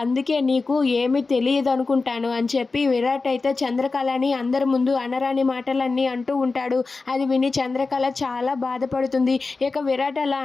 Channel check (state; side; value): quieter; right; 4.0 dB